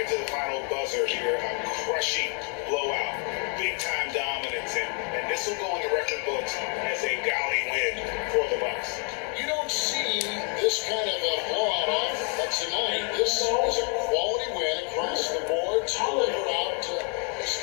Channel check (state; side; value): quieter; right; 38.9 dB